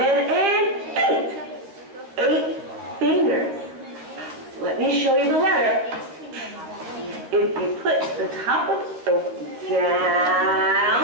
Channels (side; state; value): left; late; 12 ms